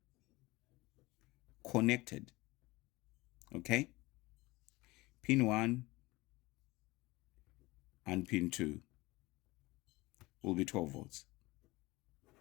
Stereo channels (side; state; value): right; quieter; 21.5 dB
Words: connected, okay, pin 1 and pin 2 will be 12 volts.